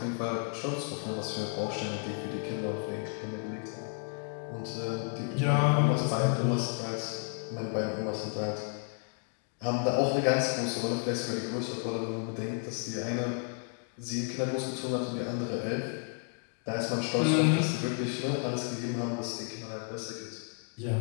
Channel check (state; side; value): quieter; right; 39.7 dB